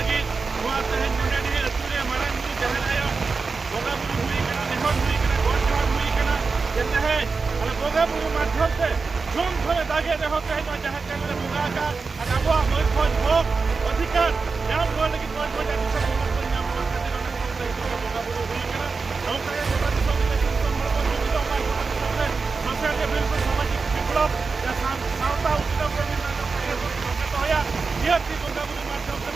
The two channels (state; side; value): quieter; left; 4.5 dB